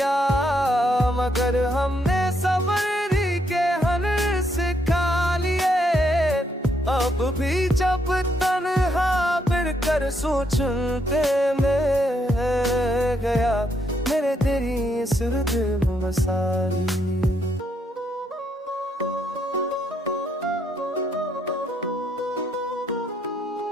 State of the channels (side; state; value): both; normal; correlation 0.75